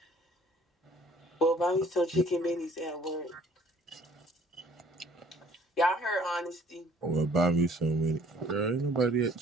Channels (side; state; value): both; normal; correlation 0.56